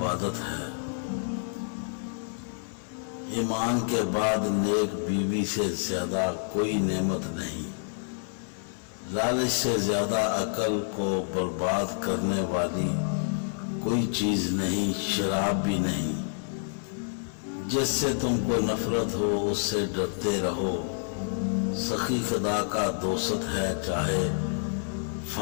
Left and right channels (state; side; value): silent; right; 59 dB below the other